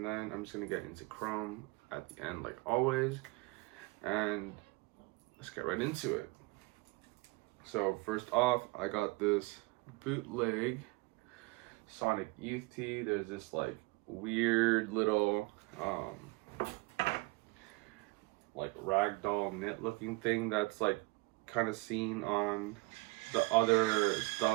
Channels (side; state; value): left; quieter; 25.1 dB